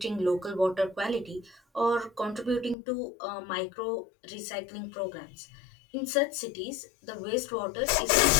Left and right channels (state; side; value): drops out; right; at 2.8 s